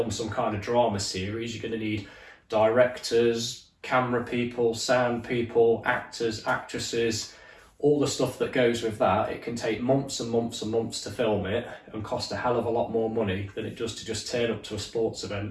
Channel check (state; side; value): identical; both; correlation 1.00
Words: some kind of drama series, you're going to need directors, camera people, sound people, actors, actresses, all the stuff that goes with that. It can take months and months and months to film it and cost a hell of a lot more money than it does to just turn up to a sports